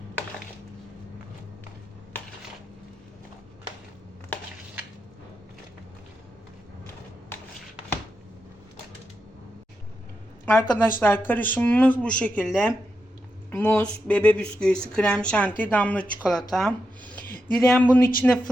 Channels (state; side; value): normal; both; correlation 0.86